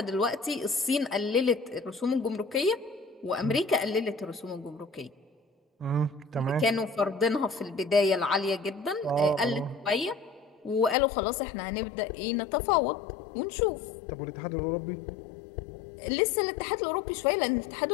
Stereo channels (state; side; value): drops out; right; at 11.0 s